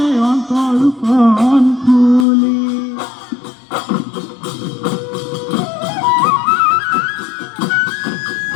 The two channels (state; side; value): drops out; right; at 2.2 s